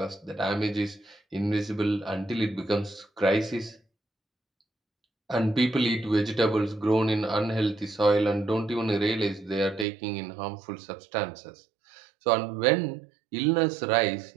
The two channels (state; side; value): drops out; left; at 9.9 s